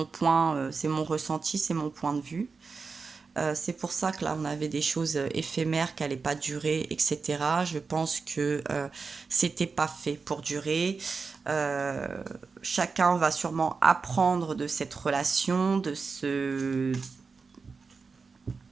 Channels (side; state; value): left; quieter; 4.7 dB